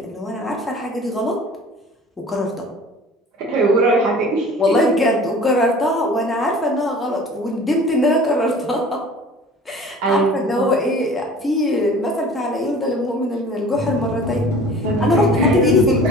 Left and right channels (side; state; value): both; normal; correlation 0.44